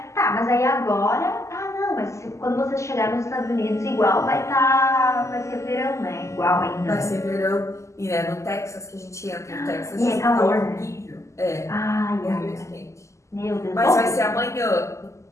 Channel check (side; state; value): right; late; 0.14 ms